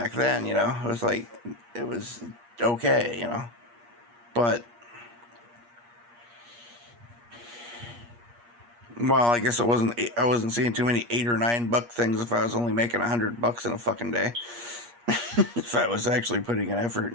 then, you know. It was like, it was okay, you know. But, well, I guess I wasn't seeing too many $8 or $9 things if I was only making $100 in a fucking day. If I was actually putting an effort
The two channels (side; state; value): left; late; 8.4 ms